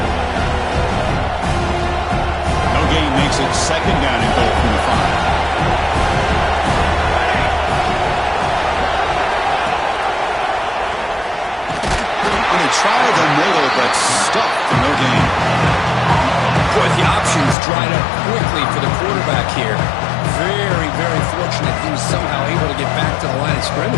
No gain makes it second down and goal from the 5. Tried the middle, but stuck. No gain. Boy, the options dried up quickly for the quarterback here. Very, very fortunate he was somehow able to get back to the line of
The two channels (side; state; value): right; drops out; at 17.6 s